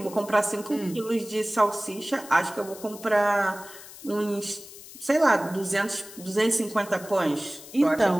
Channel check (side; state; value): left; noise; hiss, 16 dB below the sound